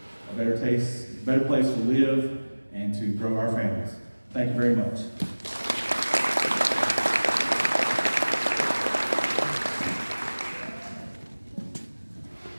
a better place to live, and to grow our families. Thank you very much.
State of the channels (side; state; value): both; inverted; correlation -1.00